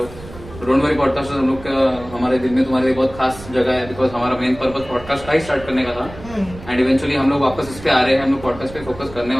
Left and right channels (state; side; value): noise; right; rumble, 16 dB below the sound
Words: डोंट वरी, पॉडकास्ट हम लोग का हमारे दिल में तुम्हारे लिए बहुत खास जगह है, बिकॉज हमारा मेन पर्पस पॉडकास्ट का ही स्टार्ट करने का था, एंड इवेंचुअली हम लोग वापस इस पे आ रहे हैं, हम लोग पॉडकास्ट पे फोकस करने